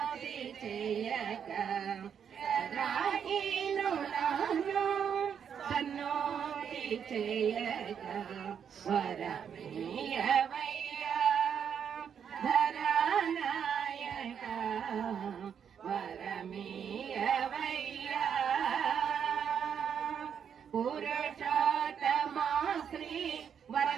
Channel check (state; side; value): quieter; left; 7.8 dB